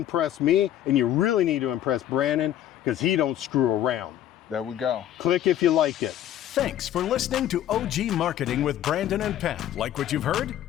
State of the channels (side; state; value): right; quieter; 11.6 dB